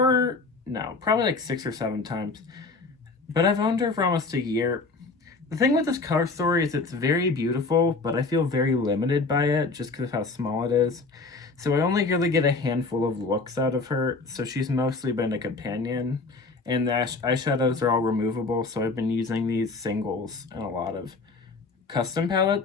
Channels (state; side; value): quieter; right; 3.9 dB